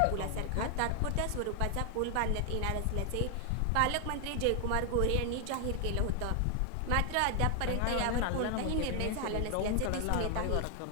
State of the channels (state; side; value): different; both; correlation 0.00